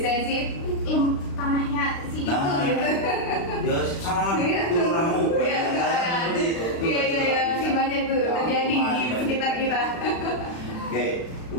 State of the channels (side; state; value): right; late; 36 ms